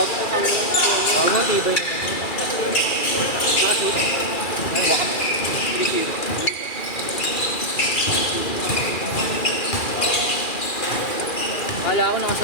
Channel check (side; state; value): right; late; 2.4 ms